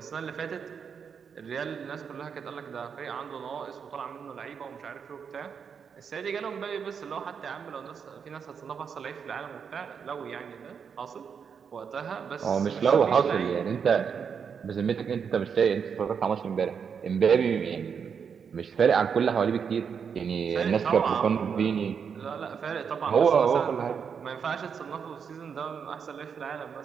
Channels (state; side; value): quieter; left; 6.7 dB